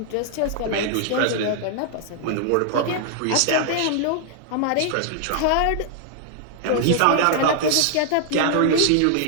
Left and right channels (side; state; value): both; different; correlation 0.00